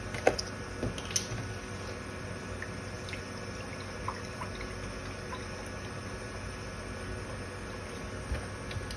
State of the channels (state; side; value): identical; both; correlation 1.00